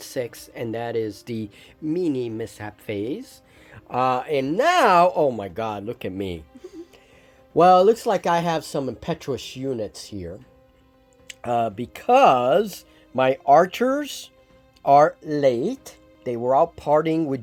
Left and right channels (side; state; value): both; identical; correlation 1.00